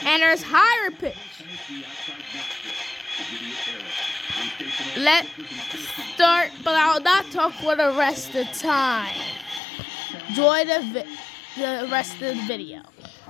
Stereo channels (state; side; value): drops out; right; at 9.6 s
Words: and there's higher pitch. Let's start, but I'll not talk for the rest of the time. Enjoy the rest of the video.